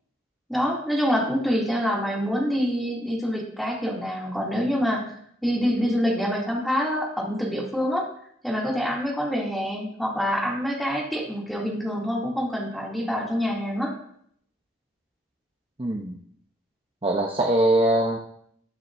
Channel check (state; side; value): normal; both; correlation 0.74